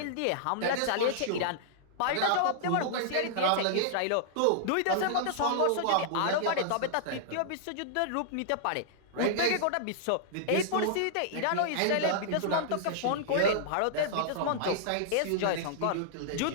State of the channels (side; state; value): both; different; correlation -0.02